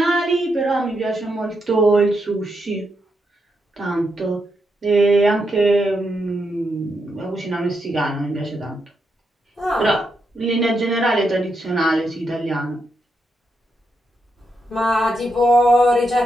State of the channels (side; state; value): both; normal; correlation 0.82